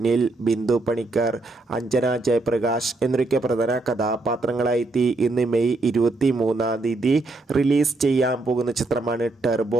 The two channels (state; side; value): quieter; left; 3.1 dB